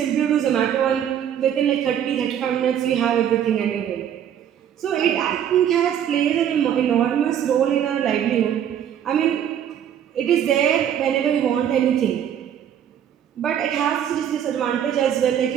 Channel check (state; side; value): quieter; left; 9.6 dB